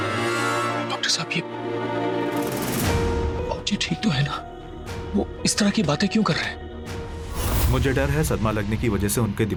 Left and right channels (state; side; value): identical; both; correlation 1.00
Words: डॉक्टर साहब, ये बाबूजी ठीक तो है ना? वो इस तरह की बातें क्यों कर रहे हैं? मुझे डर है सदमा लगने की वजह से उनके